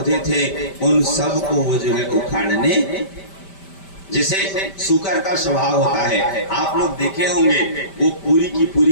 थे, उन सब को वो जो है उखाड़ने, जैसे सूकर का स्वभाव होता है। आप लोग देखे होंगे, वो पूरी की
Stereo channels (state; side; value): late; right; 5.1 ms